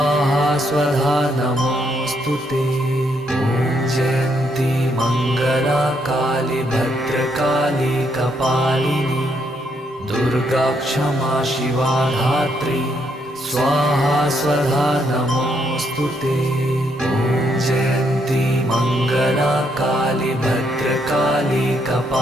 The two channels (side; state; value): both; normal; correlation 0.74